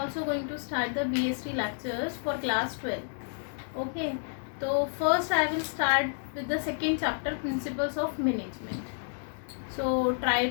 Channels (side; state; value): right; silent; digital silence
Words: going to start the BST lectures for class 12. Okay, so first I will start with the second chapter, Principles of Management. So try